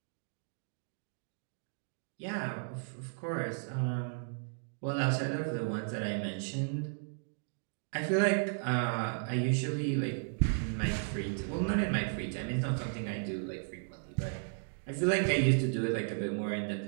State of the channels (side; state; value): left; silent; digital silence